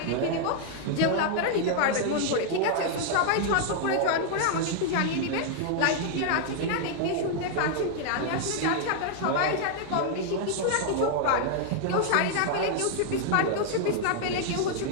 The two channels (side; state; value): both; different; correlation 0.00